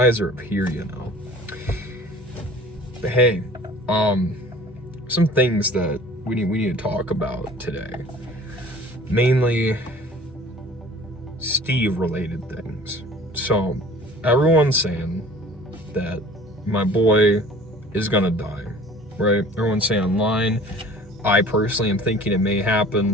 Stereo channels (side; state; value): both; normal; correlation 0.47